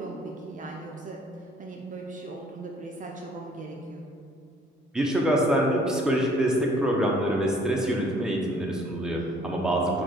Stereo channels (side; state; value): both; normal; correlation 0.59